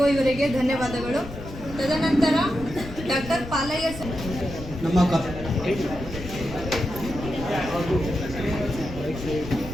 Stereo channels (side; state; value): left; noise; rumble, 11 dB below the sound